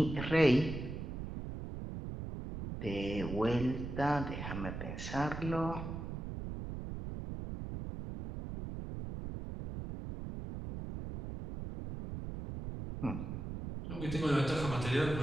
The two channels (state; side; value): noise; right; rumble, 6 dB below the sound